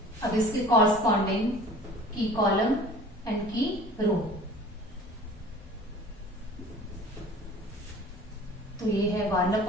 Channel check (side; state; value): both; normal; correlation 0.45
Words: अब इसके कॉरस्पॉन्डिंग की कॉलम एंड की रो, तो ये है